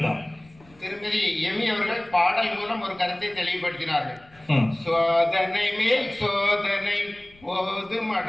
தான். திருமதி எமி அவர்கள் பாடல் மூலம் ஒரு கருத்தை தெளிவுபடுத்தினார்கள். சோதனை மேல் சோதனை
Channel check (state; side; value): noise; left; rumble, 27 dB below the sound